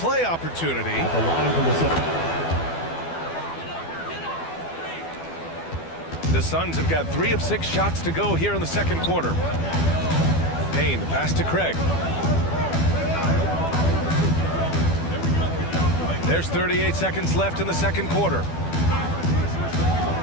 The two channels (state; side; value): late; right; 12 ms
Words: opportunity. At the line for the The Suns have got 3 of 6 shots to go here in the second quarter. Payne, the pass to Craig. There's 38 seconds left in the second quarter.